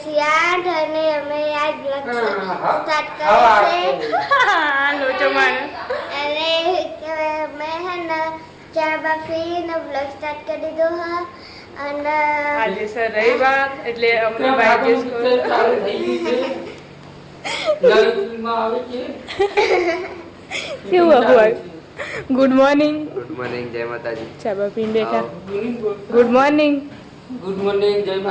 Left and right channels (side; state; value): both; identical; correlation 1.00